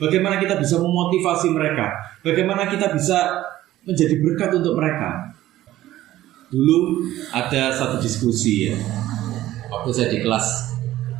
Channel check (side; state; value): left; quieter; 14.6 dB